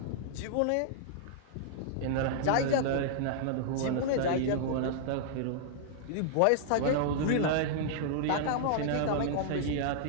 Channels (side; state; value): both; different; correlation -0.01